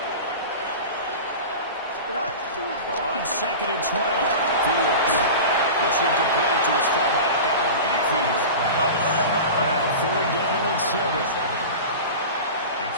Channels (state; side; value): inverted; both; correlation -0.31